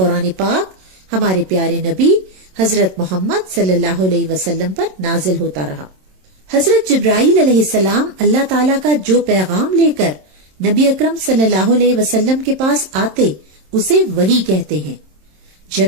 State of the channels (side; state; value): left; late; 27 ms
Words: پاک ہمارے پیارے نبی حضرت محمد صلی اللہ علیہ وسلم پر نازل ہوتا رہا۔ حضرت جبرائیل علیہ السلام اللہ تعالیٰ کا جو پیغام لے کر نبی اکرم صلی اللہ علیہ وسلم کے پاس آتے اسے وحی کہتے ہیں۔